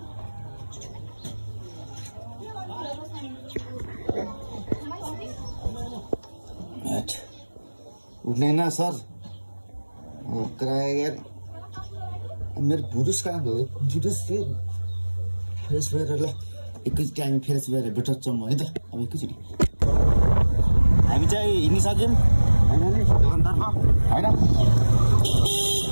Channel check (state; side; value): inverted; both; correlation -1.00